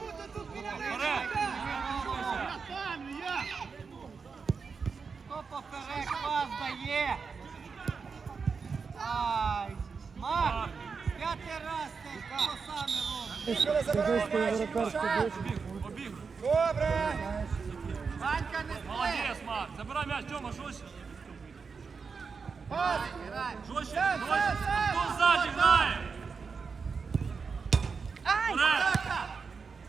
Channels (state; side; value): quieter; left; 5.2 dB